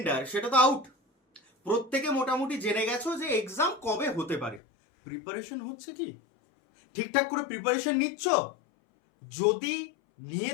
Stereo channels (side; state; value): right; drops out; at 4.6 s